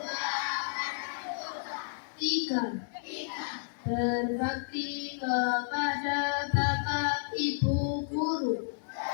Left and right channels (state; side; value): silent; right; digital silence